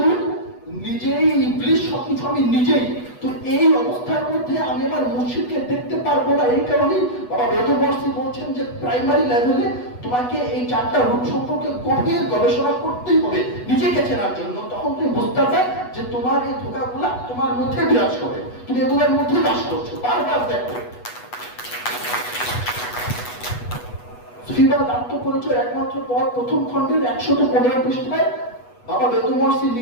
নিজেই ইবলিশ, সবকিছু আমি নিজেই। তো এই অবস্থার মধ্যে আমি আমার মুর্শিদকে দেখতে পারবো না। এই কারণেই বাবা মেহেদুর ওয়ার্সি বলছেন যে প্রাইমারি লেভেলে তোমাকে এই 4টা রূপ সম্পর্কে গভীর গবেষণা করতেই হবে নিজেকে চেনার জন্য। তখন তুমি বুঝতে পারবে যে তোমার এই ধোঁকাগুলা তোমার মধ্যে বিরাজ করে, তুমি এগুলোর মধ্যে বাস করছো। বারবার দেখো সুফিবাদ আত্মপরিচয় একমাত্র পথ প্রথম খণ্ডের 115 পৃষ্ঠায় বাবা বেদুমর্সি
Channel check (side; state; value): right; late; 8.2 ms